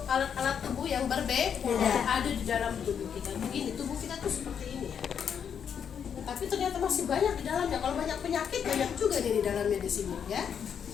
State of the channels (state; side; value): quieter; right; 7.7 dB